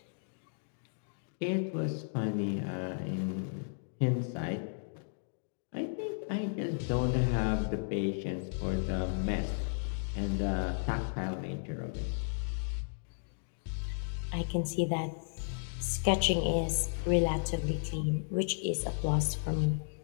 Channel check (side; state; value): right; silent; digital silence